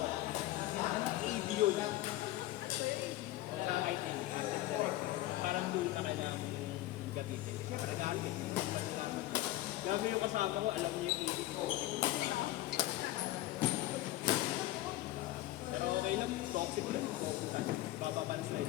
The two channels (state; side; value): quieter; right; 16.3 dB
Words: AD yun. Sa IT, parang doon na kailangan gamitin. Siyempre, nag-aaral yun. Gabi yung kasama ko, alam niyo yung AD ko. Pero okay lang, toxic lang. Baba pa ang